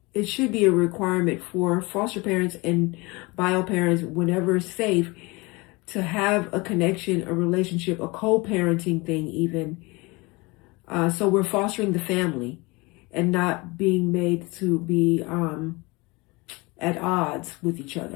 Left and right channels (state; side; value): quieter; right; 25.1 dB